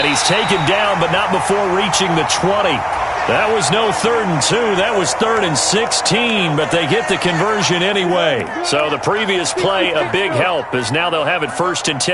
he's taken down, but not before reaching the 20. That was no 3rd and 2. That was 3rd and 16, but they get the conversion anyway. So the previous play, a big help, as now they'll have it 1st and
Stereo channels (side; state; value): both; identical; correlation 1.00